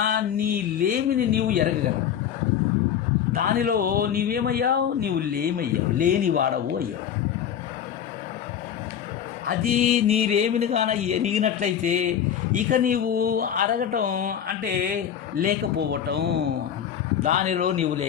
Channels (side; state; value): right; quieter; 9.1 dB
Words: నీ లేమిని నీవు ఎరగగలవు. దానిలో నీవేమయ్యావు? నీవు లేనివాడవు అయ్యావు. అది నీరేమిని కాన ఎరిగినట్లయితే ఇక నీవు అరగటం అంటే లేకపోవటం. దానిలో నీవు